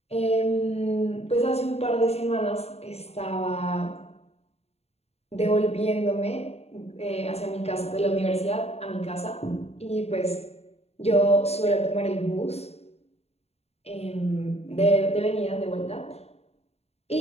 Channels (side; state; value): right; late; 0.30 ms